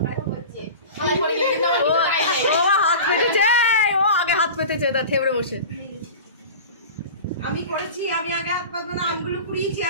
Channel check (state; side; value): inverted; both; correlation -0.34